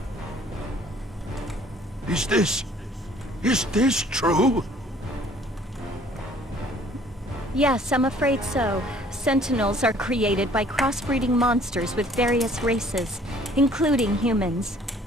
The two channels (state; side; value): normal; both; correlation 0.56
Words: Is this true? Yes, I'm afraid so. Sentinels are created by crossbreeding monsters with various races, including humans.